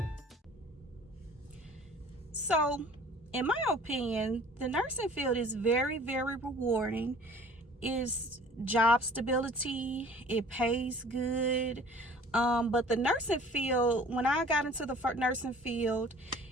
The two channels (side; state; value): both; normal; correlation 0.49